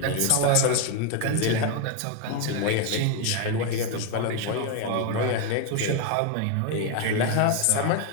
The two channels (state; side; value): different; both; correlation 0.01